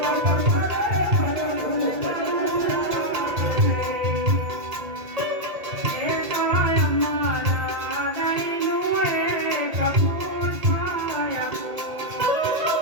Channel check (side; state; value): left; late; 2.2 ms